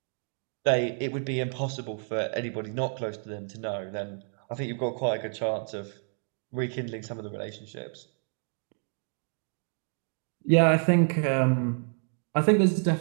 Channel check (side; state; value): left; silent; 56 dB below the other